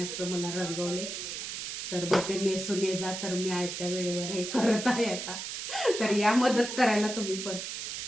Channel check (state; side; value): noise; right; hiss, 6 dB below the sound